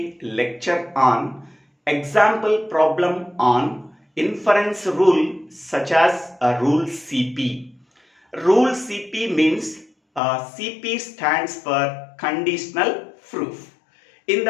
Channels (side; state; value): right; drops out; at 10.2 s